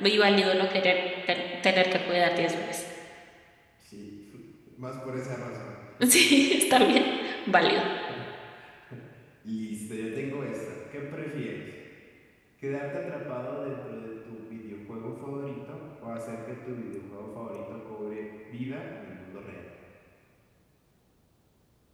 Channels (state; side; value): identical; both; correlation 1.00